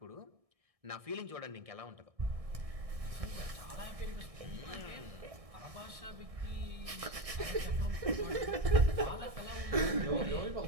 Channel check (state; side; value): late; left; 1.6 ms